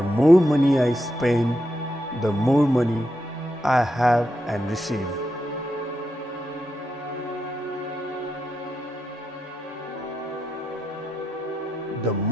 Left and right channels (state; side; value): normal; both; correlation 0.85